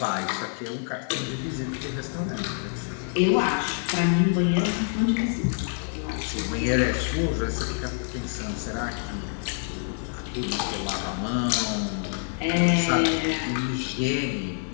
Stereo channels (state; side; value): silent; right; 60 dB below the other